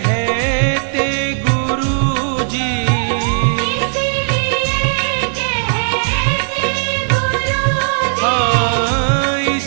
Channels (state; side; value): silent; left; 69 dB below the other